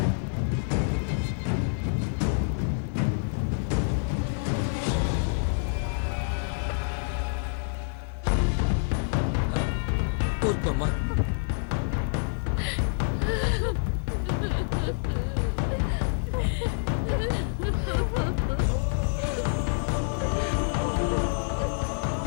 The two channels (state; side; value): silent; right; 60 dB below the other